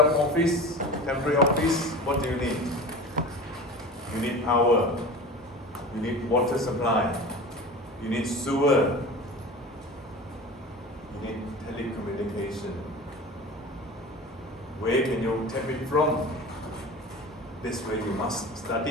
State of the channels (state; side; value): normal; both; correlation 0.35